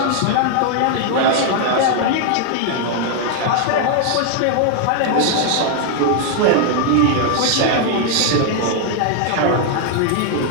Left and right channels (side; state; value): both; different; correlation 0.00